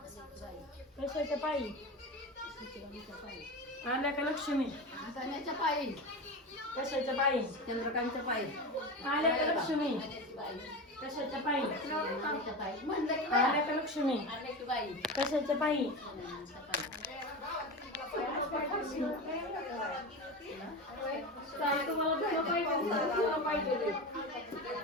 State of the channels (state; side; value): normal; both; correlation 0.24